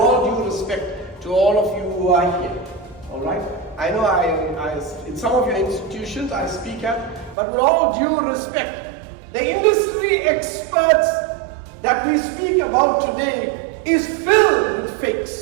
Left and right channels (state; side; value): drops out; left; at 7.4 s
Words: due respect to all of you who are here, all right? I know in some of your institutions I speak at, but with all due respect, the industry experts that we speak about today is filled with